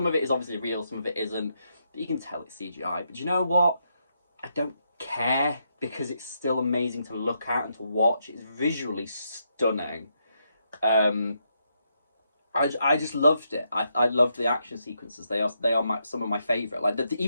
of it is obviously real, some of it isn't, but you can tell it's CGI. But you know what? I don't care, because it's still amazing to look at and to watch. It's visually stunning. I just loved it. I loved the action sequences. They are some of my favourite. Like,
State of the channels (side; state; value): both; inverted; correlation -0.79